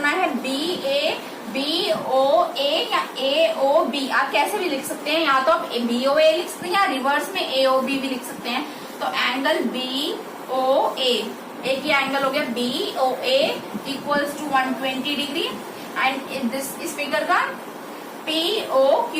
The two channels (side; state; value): both; identical; correlation 1.00